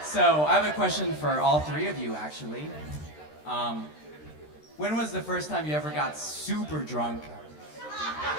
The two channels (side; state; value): right; late; 13 ms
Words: I have a question for all 3 of you, actually. When was the first time you ever got super drunk,